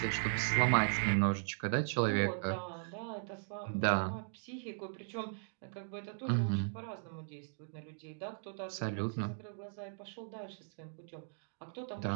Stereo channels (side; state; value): left; silent; digital silence